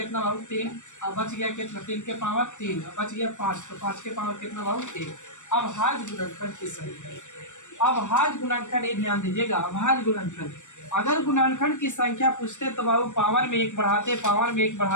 बाबू 3, अब बच गया कितना 3 के पावर 3, अब बच गया 5, तो 5 के पावर कितना बाबू 1। अब अभाज्य गुणनखंड की संख्या, अभाज्य गुणनखंड ये ध्यान दीजिएगा, अभाज्य गुणनखंड अगर गुणनखंड की संख्या पूछते तो बाबू पावर में 1 बढ़ाते, पावर में 1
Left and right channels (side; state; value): right; late; 0.85 ms